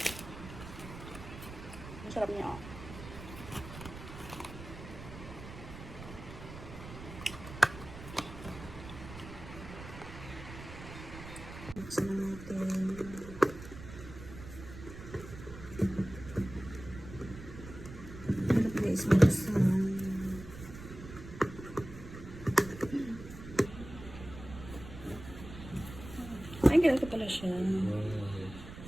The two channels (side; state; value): right; noise; rumble, 13 dB below the sound